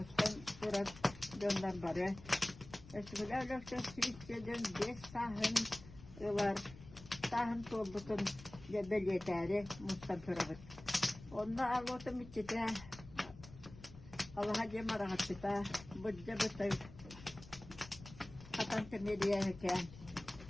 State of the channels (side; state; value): left; noise; rumble, 17 dB below the sound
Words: durak döndür barı. Eksikler lökse sürükleden 5 sahın var. Sahın toldukun belirteri mustan pırağıt. Onda ağlotum içite, Allah'a cemara haçıta, budca bıtay, katan temeliye heken.